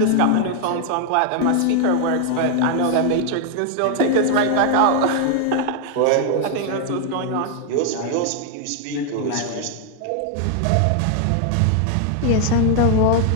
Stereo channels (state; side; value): different; both; correlation 0.00